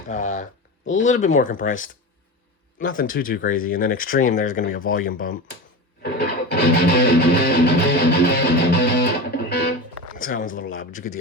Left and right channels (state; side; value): normal; both; correlation 0.26